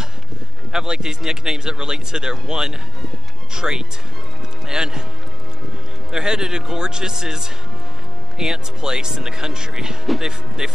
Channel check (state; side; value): normal; both; correlation 0.35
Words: have like these nicknames that relate to their one trait. And they're headed to Gorgeous's aunt's place in the country. They